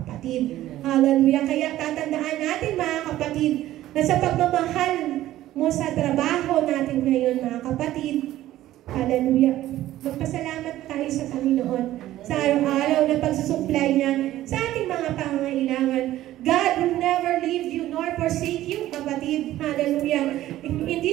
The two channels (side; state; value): left; quieter; 14.3 dB